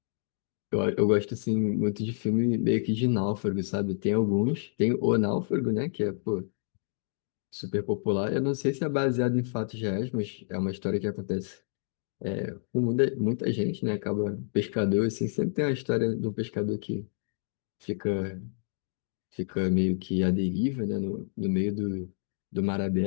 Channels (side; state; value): right; silent; digital silence